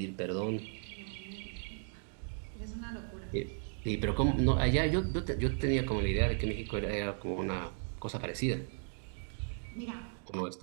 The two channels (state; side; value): silent; left; 54 dB below the other